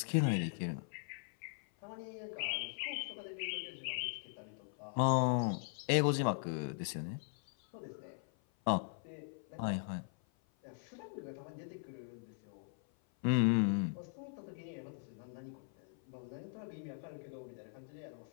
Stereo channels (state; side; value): silent; right; 51 dB below the other